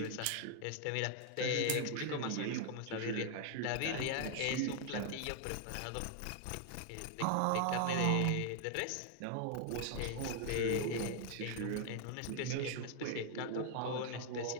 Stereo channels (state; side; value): different; both; correlation 0.00